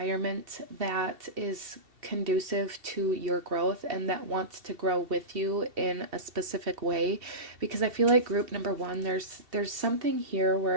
that is conducive to your growth and that wants to grow with you in a specific way. Because I feel like group number 1, there's something here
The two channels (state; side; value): late; left; 2.7 ms